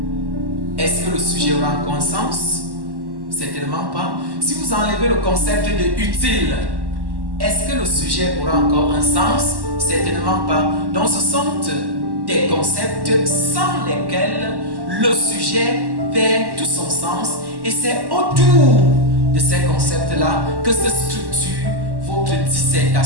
est-ce que le sujet aura encore un sens? Certainement pas. Si vous enlevez le concept de utile, est-ce que le sujet aura encore un sens? Certainement pas. Donc ce sont des concepts sans lesquels le sujet perd tout son sens, et c'est autour de ces concepts-là que se structure votre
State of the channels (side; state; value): left; late; 1.1 ms